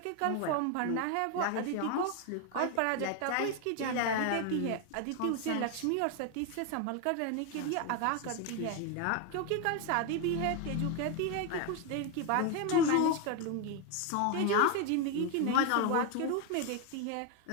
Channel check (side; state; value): both; different; correlation 0.01